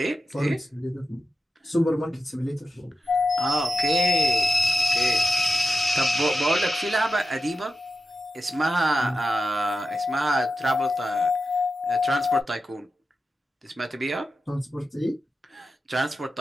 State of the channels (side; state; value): both; normal; correlation 0.90